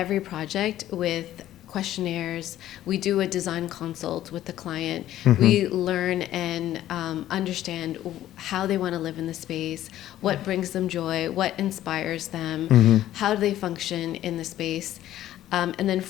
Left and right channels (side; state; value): right; quieter; 13.1 dB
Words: project with questionnaires. We do a design consult with the client. We learn and understand how they want to live in the space, what brings them joy, what inspires them, how do they function in the space. And then